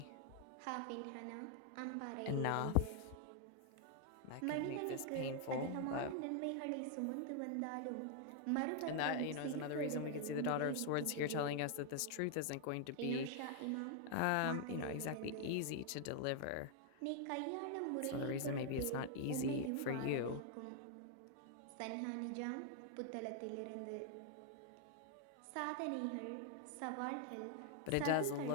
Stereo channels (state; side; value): different; both; correlation 0.00